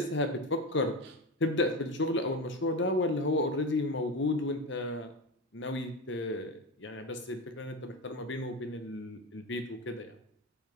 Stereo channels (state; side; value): normal; both; correlation 0.20